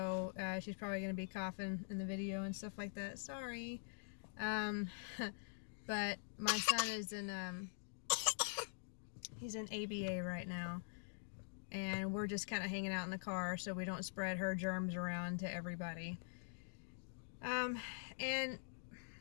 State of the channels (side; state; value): right; silent; digital silence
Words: she's probably going to be coughing in the video and stuff like that. Sorry. But my son is in, he's in ABA right now. And we're just kind of hanging out in the car so we don't spread her germs around to everybody. And